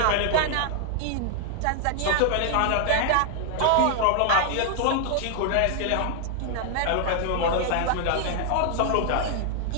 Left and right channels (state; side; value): different; both; correlation 0.00